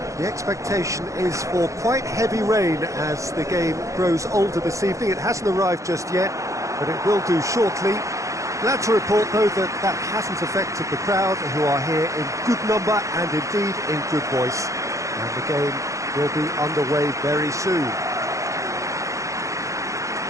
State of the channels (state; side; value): late; left; 0.15 ms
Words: The expectation is for quite heavy rain as the game grows older this evening. It hasn't arrived just yet, but it will do shortly. Glad to report, though, that that hasn't affected the crowd, who are here in good number and indeed in good voice. And the game will be underway very soon.